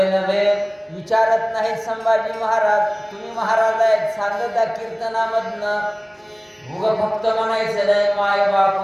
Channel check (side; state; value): both; identical; correlation 1.00